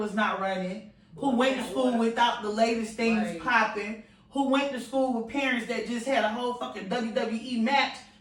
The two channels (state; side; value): identical; both; correlation 1.00